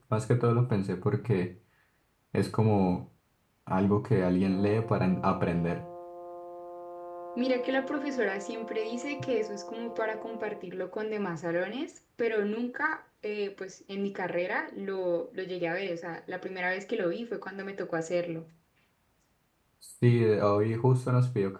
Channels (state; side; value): identical; both; correlation 1.00